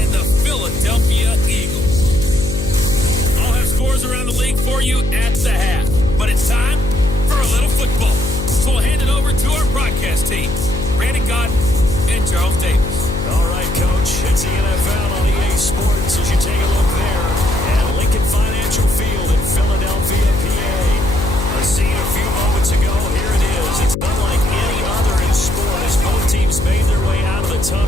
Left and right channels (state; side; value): noise; left; hum, 4 dB below the sound